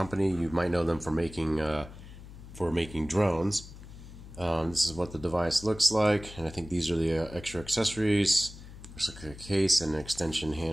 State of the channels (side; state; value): left; noise; hum, 16 dB below the sound